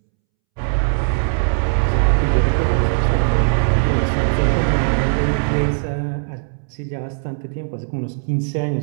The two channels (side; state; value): left; silent; 67 dB below the other